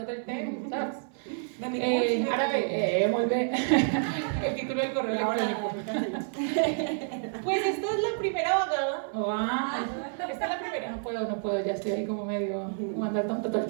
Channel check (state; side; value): silent; left; 59 dB below the other